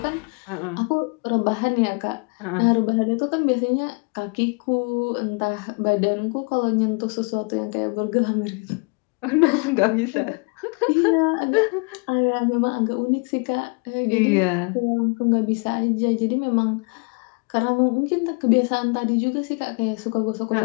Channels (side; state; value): right; quieter; 33.4 dB